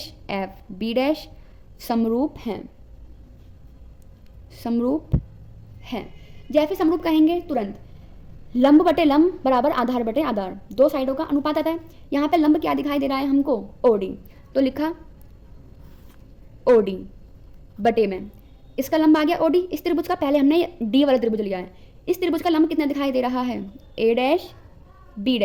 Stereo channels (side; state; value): both; identical; correlation 1.00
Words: F, B' समरूप हैं। समरूप हैं। जैसे समरूप कहेंगे तुरंत लंब बटे लंब बराबर आधार बटे आधार, दो साइडों का अनुपात आता है। यहाँ पे लंब क्या दिखाई दे रहा है हमको? OD। तो लिखा OD बटे में इसका लंब आ गया OD। इस त्रिभुज का पहले हमने D वाला त्रिभुज लिया है। इस त्रिभुज का लंब कितना दिखाई दे रहा है? A',